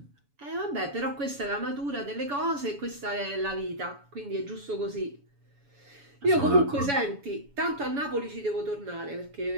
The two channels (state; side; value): late; left; 7.1 ms